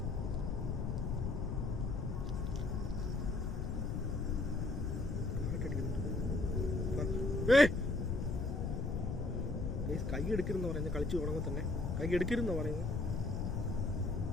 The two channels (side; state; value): left; noise; rumble, 2 dB below the sound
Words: കൈ എടുക്കരുതെന്ന് പറയുന്നത് കളിച്ച് തുടങ്ങുമ്പോൾ തന്നെ കൈ എടുക്കരുതെന്ന് പറയുന്നത്.